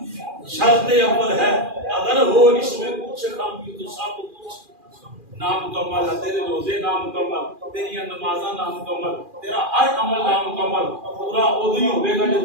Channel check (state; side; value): late; left; 2.4 ms